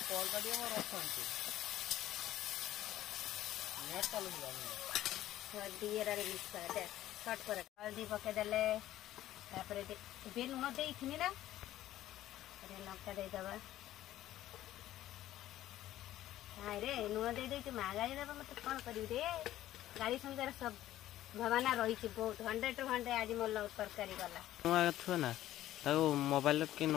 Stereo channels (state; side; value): quieter; right; 13.8 dB